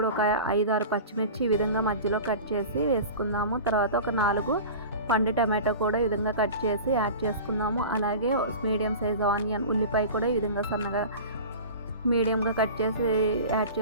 ఒక 5-6 పచ్చిమిర్చి ఈ విధంగా మధ్యలో కట్ చేసి వేసుకుందాము. తర్వాత ఒక 4 పండు టమాటో కూడా ఈ విధంగా కట్ చేసి యాడ్ చేసుకుందాము. అలాగే మీడియం సైజ్ ఆనియన్, ఉల్లిపాయ కూడా ఈ విధంగా సన్నగా మీడియంగా కట్ చేసి యాడ్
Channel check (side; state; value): both; inverted; correlation -0.35